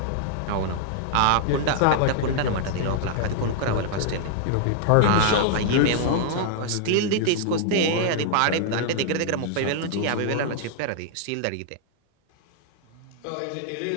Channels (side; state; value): both; different; correlation -0.01